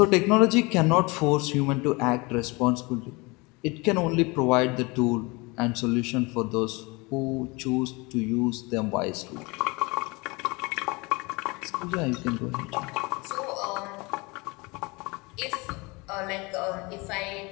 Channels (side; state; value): right; quieter; 26.1 dB